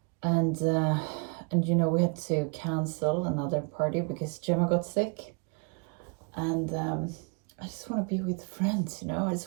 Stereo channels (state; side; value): quieter; left; 34.6 dB